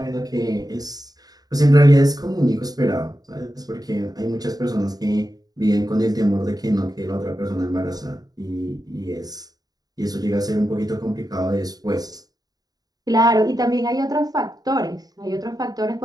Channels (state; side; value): late; left; 0.19 ms